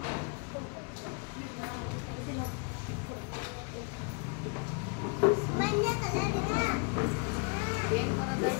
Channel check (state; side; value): quieter; right; 35.2 dB